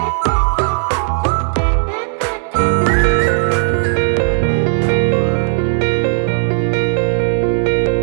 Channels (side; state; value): left; silent; 69 dB below the other